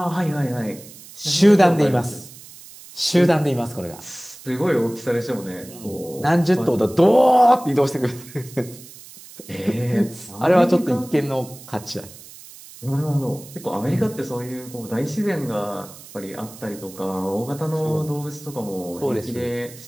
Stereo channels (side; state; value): right; noise; hiss, 18 dB below the sound